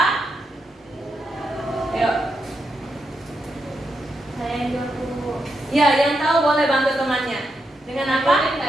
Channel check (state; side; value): normal; both; correlation 0.84